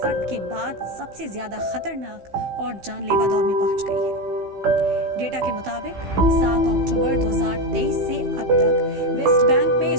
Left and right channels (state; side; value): late; left; 15 ms